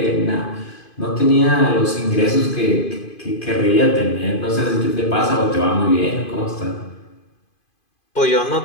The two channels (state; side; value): late; right; 2.5 ms